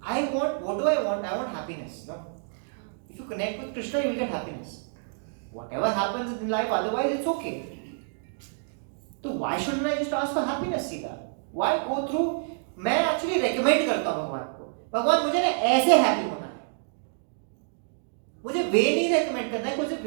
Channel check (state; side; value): silent; left; digital silence